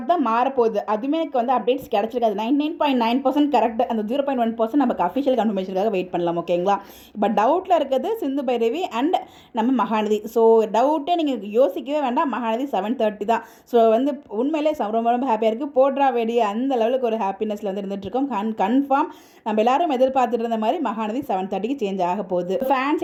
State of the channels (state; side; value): identical; both; correlation 1.00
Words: தான் மாறப்போகுது. அதுவுமே எனக்கு அப்டேட்ஸ் கிடைச்சிருக்காது. 99.9% கரெக்ட். அந்த 0.1% நமக்கு அஃபிஷியல் கன்ஃபர்மேஷனுக்காக வெயிட் பண்ணலாம். ஓகேங்களா, இப்போ டவுட்டில் இருக்கிறது சிந்து பைரவி அண்ட் நம்ம மகாநதி. ஸோ டவுட்டே நீங்கள் யோசிக்கவே வேண்டாம், மகாநதி 7:30 தான். ஸோ உண்மையிலே ரொம்ப ரொம்ப ஹாப்பியாக இருக்குது. போட்ரா வெடி அந்த லெவலுக்கு ஒரு ஹாப்பினஸில் இருந்துகிட்ருக்கோம். கன்ஃபார்ம் நம்ம எல்லாரும் எதிர்பார்த்துட்டு இருந்த மாதிரி மகாநதி 7:30 சேஞ்ச் ஆக போகுது.